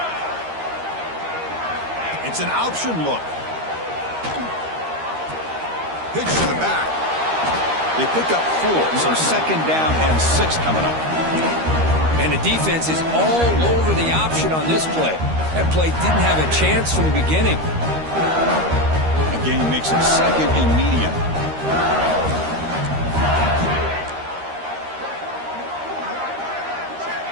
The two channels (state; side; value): late; left; 13 ms